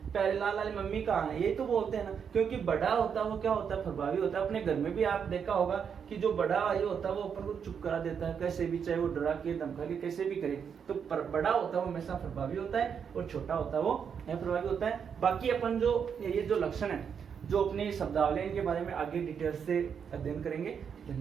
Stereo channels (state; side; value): quieter; left; 7.1 dB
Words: प्यारेलाल वाली मम्मी कहाँ है? ये तो बोलते हैं ना, क्योंकि बड़ा होता है वो क्या होता है? प्रभावी होता है। अपने घर में भी आप देखा होगा कि जो बड़ा ये होता है वो अपन को चुप करा देता है कैसे भी, चाहे वो डरा के धमका के कैसे भी करे। तो बड़ा होता है वो हमेशा प्रभावी होता है और छोटा होता है वो अप्रभावी होता है। बाकी अपन जो ये जो लक्षण है, जो अपने शब्दावली, इनके बारे में आगे डिटेल से अध्ययन करेंगे।